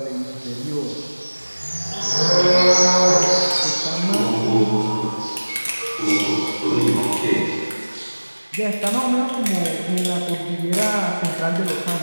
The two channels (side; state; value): both; inverted; correlation -1.00